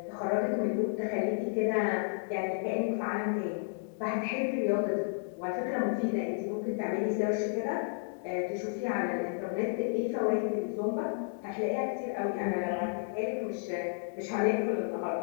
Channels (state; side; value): silent; right; digital silence